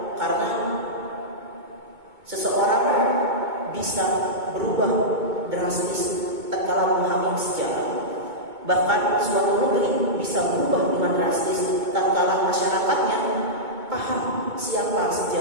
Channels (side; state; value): left; late; 2.2 ms